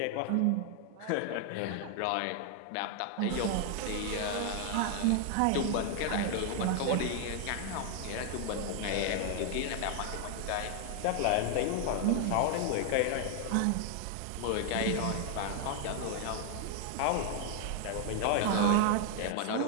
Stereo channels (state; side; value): different; both; correlation 0.00